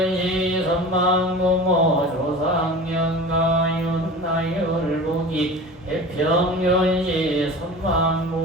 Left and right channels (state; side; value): normal; both; correlation 0.35